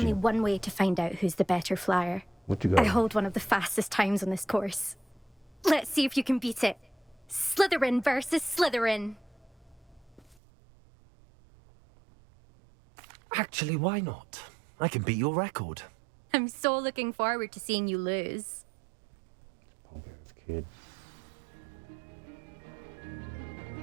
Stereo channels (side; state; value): left; drops out; at 10.4 s